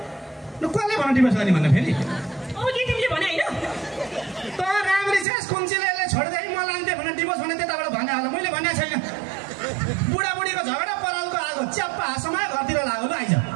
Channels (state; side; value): drops out; left; at 5.2 s